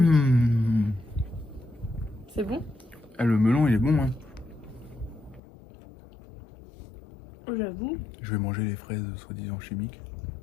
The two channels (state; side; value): drops out; right; at 5.4 s